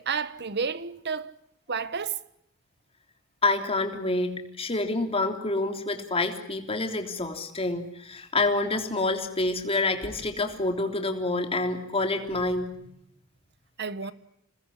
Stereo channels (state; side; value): normal; both; correlation 0.10